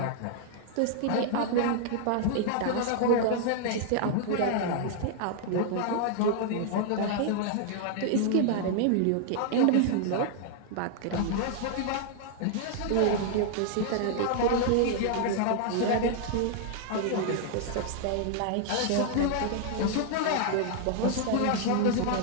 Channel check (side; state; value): both; different; correlation 0.00